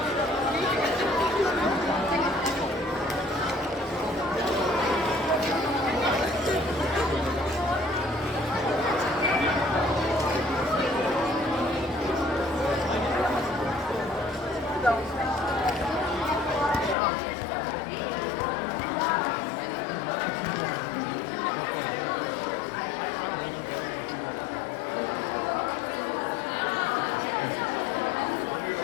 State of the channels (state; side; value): drops out; right; at 16.9 s